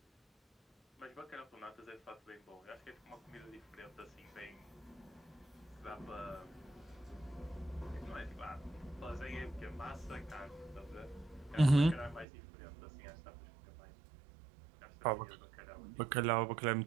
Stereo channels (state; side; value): drops out; left; at 12.2 s